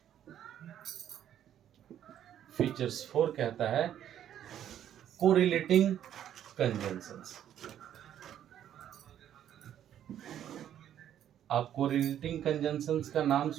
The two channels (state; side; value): quieter; left; 10.5 dB